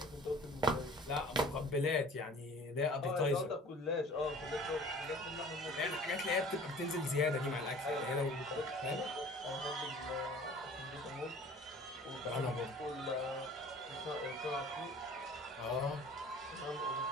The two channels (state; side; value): normal; both; correlation 0.47